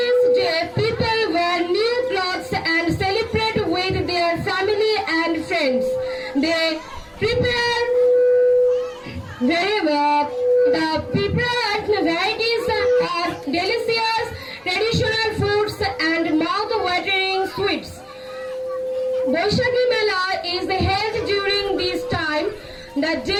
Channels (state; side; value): identical; both; correlation 1.00